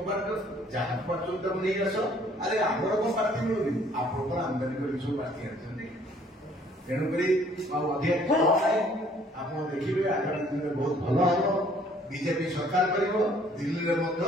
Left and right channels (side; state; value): both; normal; correlation 0.59